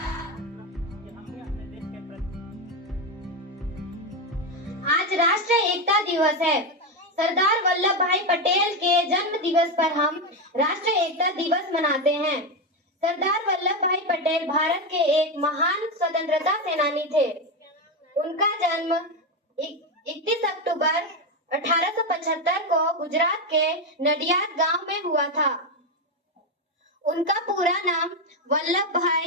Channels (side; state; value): both; normal; correlation 0.10